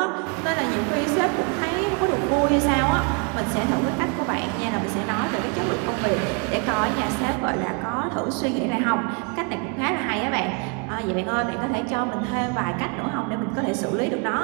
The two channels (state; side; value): quieter; left; 35.1 dB